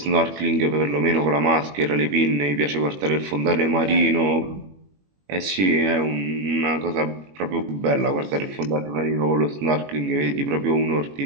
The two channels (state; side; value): late; left; 21 ms